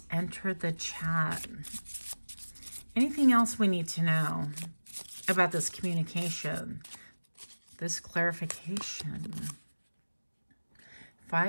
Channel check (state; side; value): inverted; both; correlation -1.00